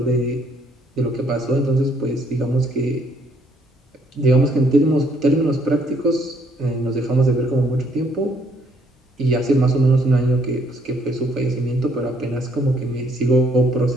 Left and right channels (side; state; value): both; normal; correlation 0.67